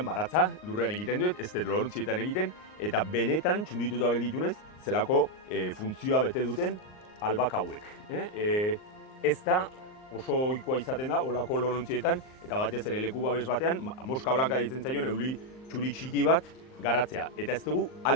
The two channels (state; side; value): late; right; 38 ms